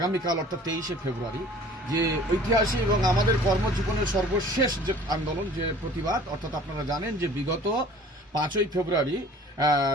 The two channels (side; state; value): both; normal; correlation 0.48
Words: অর্থাৎ 23শে ফেব্রুয়ারি যে ঐতিহাসিক এবং আমাদের কর্মজীবনের সর্বশেষ যে আন্দোলন, যে প্রতিবাদ, অর্থাৎ আপনারা জানেন যে বিগত 5ই ফেব্রুয়ারি